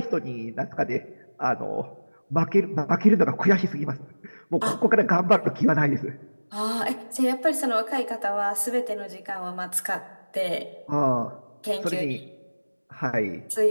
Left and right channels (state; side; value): inverted; both; correlation -1.00